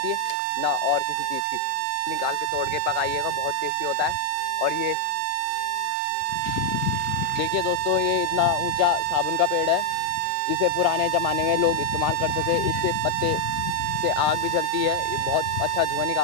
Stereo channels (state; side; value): different; both; correlation 0.01